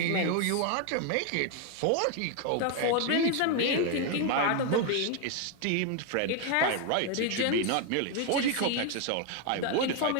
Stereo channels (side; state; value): both; different; correlation 0.01